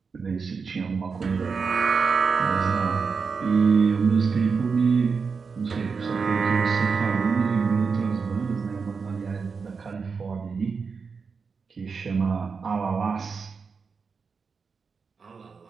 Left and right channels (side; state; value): left; quieter; 5.3 dB